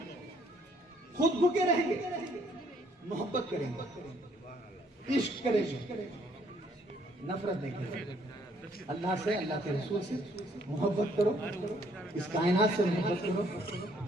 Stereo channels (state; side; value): normal; both; correlation 0.65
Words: खुद भूखे रहेंगे, मोहब्बत करेंगे, इश्क करेंगे, नफरत नहीं करेंगे। अल्लाह से, अल्लाह के रसूल से मोहब्बत करो, इस कायनात से मोहब्बत करो,